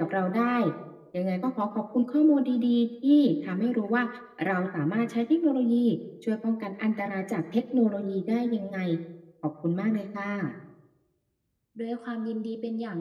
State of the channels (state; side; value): identical; both; correlation 1.00